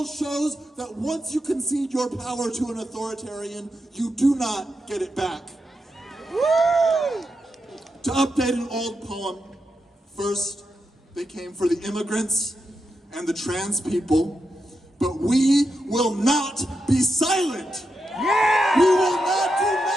shows that once you concede your power to an authoritarian, you do not get it back. To update an old poem, first they came for the immigrants and the trans people, but we will not be silent. Yeah! We will not do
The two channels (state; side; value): normal; both; correlation 0.86